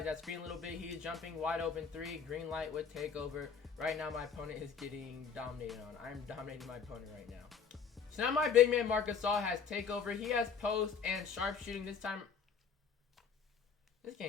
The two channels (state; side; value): quieter; right; 6.4 dB